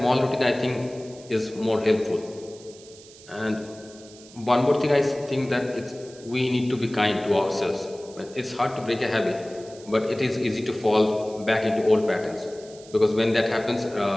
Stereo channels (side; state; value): right; noise; hiss, 21 dB below the sound